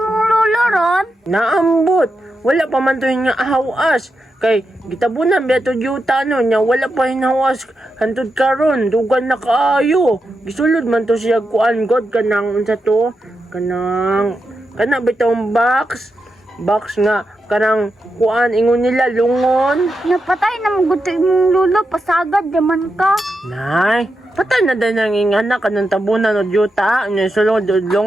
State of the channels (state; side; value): normal; both; correlation 0.87